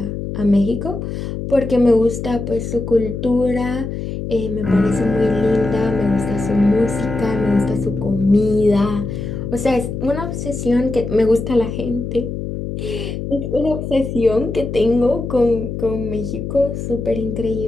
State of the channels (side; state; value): left; noise; hum, 5 dB below the sound